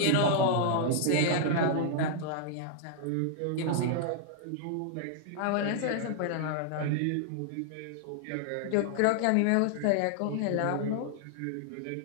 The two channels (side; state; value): both; different; correlation -0.01